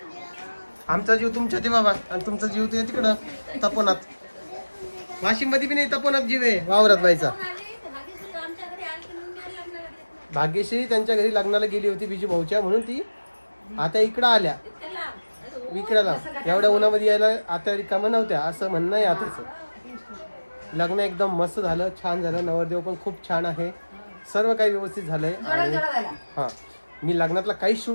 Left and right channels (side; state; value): both; inverted; correlation -1.00